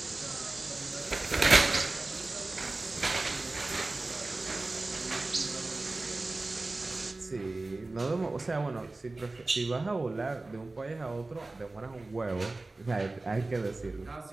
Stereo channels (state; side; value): quieter; left; 3.2 dB